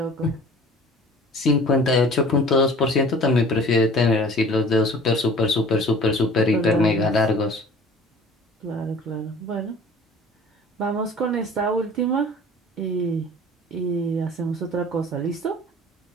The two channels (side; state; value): both; normal; correlation 0.46